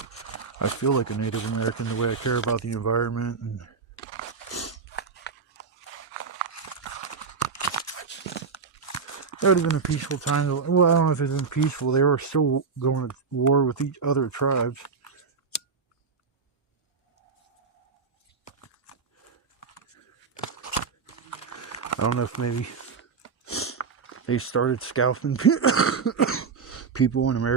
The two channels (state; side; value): quieter; left; 5.3 dB